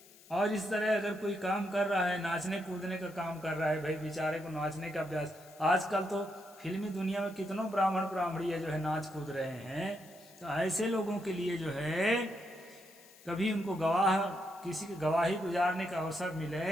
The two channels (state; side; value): noise; left; hiss, 23 dB below the sound